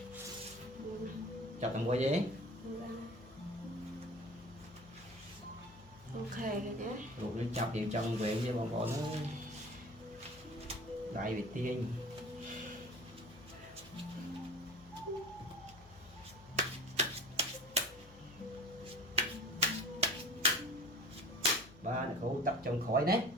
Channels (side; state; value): left; noise; hum, 22 dB below the sound